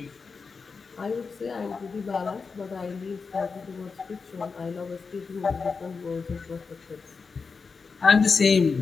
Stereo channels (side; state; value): right; quieter; 4.9 dB